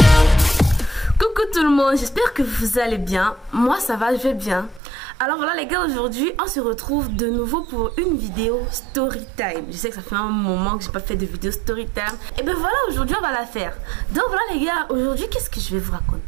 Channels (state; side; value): drops out; left; at 4.8 s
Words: Tout le monde, j'espère que vous allez bien. Moi ça va, je vais bien. Alors voilà les gars, aujourd'hui on se retrouve de nouveau pour une vidéo story time. Je sais que ça fait un moment que j'ai pas fait de vidéo story time. Et ben voilà, aujourd'hui on va la faire. Donc voilà les gars, aujourd'hui qu'est-ce que je vais vous